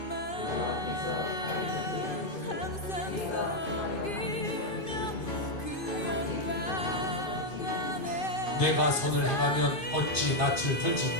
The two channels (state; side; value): late; right; 2.5 ms